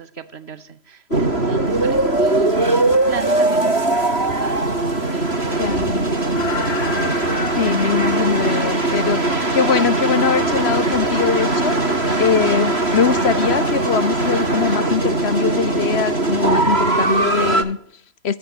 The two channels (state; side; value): late; right; 3.0 ms